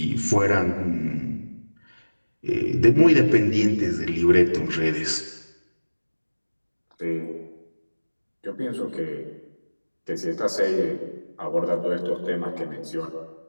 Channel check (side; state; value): both; inverted; correlation -1.00